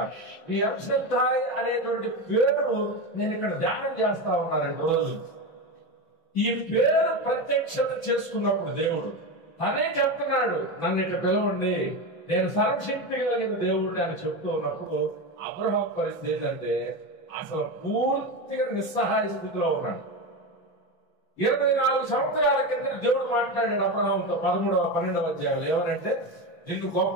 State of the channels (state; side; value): late; right; 6.1 ms